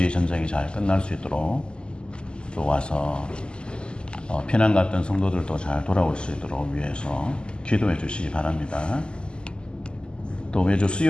전쟁이 잘 끝날 수 있도록 또 와서 피난 갔던 성도들도 잘 돌아올 수 있도록 위해서 기도해 주시기 바랍니다. 또 매주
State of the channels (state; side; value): late; right; 0.049 ms